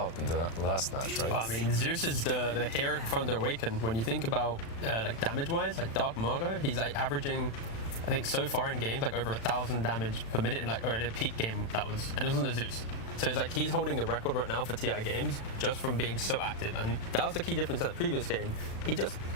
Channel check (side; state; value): right; late; 36 ms